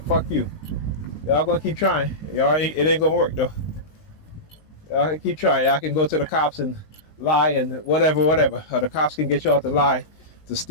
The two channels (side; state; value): right; late; 19 ms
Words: you. Y'all gonna keep trying. It ain't gonna work though. Y'all can keep trying. Y'all can go to the cops and lie and whatever. Or the cops can get y'all to lie, to